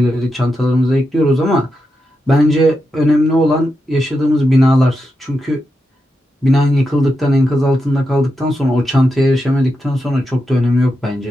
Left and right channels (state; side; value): normal; both; correlation 0.87